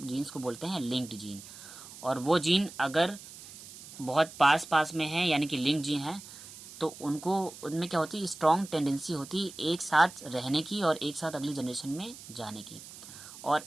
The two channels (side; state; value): right; noise; hiss, 16 dB below the sound